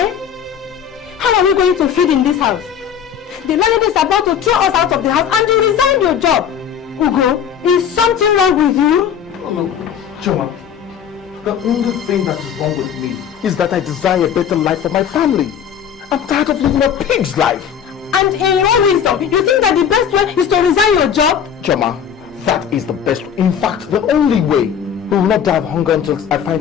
How are we going to feed in this house? The landlady is about to throw us out of the house and you resigned your job. Ugo, is something wrong with you? Oh no, Choma. The only thing that is wrong with me is that I desire a better life for my family. I'm tired of living a pig's life. And in your wisdom, you think that the best way is to resign your job? Choma, that is the best. In fact, the only way. We will not die of hunger until I find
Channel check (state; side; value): quieter; right; 8.3 dB